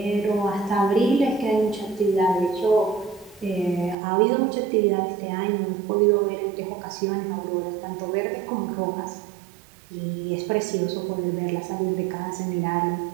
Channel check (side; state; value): left; drops out; at 4.0 s